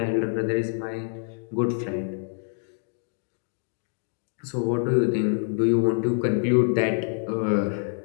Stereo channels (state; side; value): silent; right; 61 dB below the other